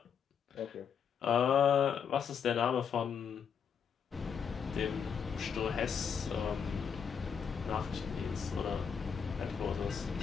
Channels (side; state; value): right; quieter; 7.0 dB